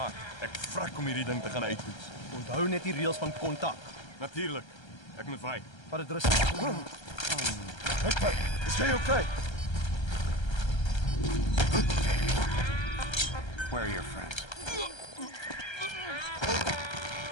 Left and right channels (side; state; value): right; late; 1.3 ms